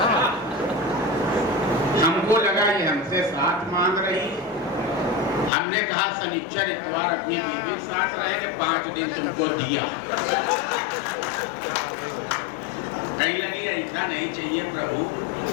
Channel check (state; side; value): drops out; right; at 5.5 s